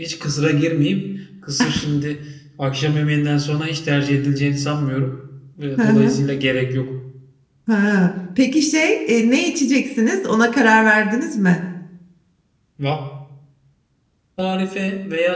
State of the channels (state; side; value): identical; both; correlation 1.00